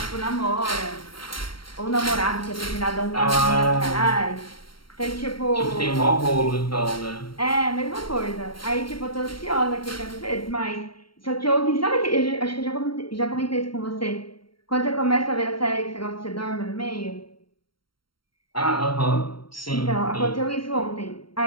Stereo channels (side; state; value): right; late; 0.73 ms